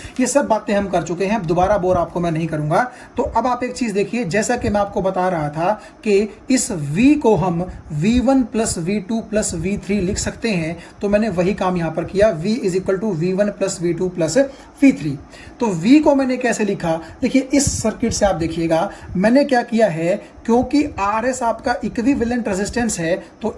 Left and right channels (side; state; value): both; identical; correlation 1.00